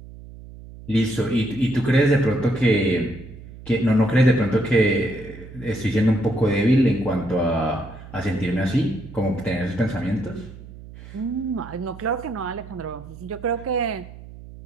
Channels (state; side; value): noise; right; hum, 16 dB below the sound